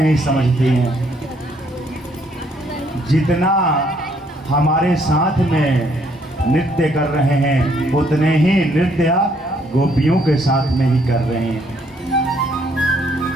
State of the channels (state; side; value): normal; both; correlation 0.68